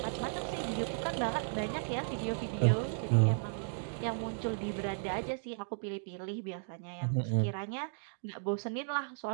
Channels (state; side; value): silent; left; digital silence